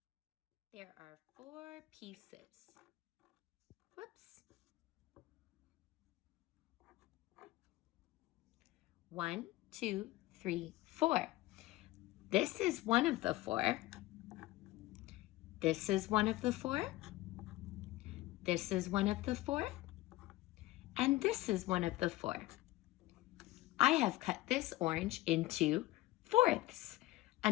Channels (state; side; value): quieter; right; 17.9 dB